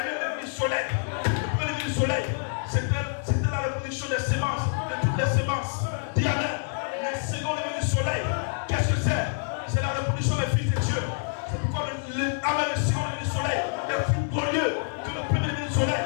eu le soleil. Le premier lever du soleil, c'était la reproduction des sémences, de toutes les sémences. Dis amen. Mais le second lever du soleil, qu'est-ce que c'est? C'est la reproduction des fils de Dieu. C'est pourquoi le second lever du soleil est plus glorieux que le premier lever du soleil.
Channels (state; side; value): silent; right; digital silence